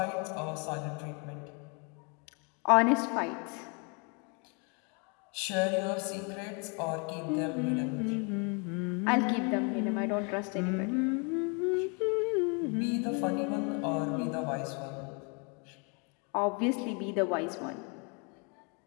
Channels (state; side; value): quieter; right; 34.7 dB